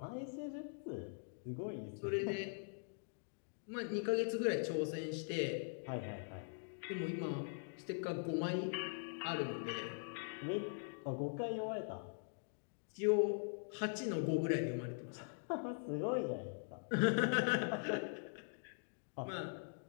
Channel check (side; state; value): right; silent; digital silence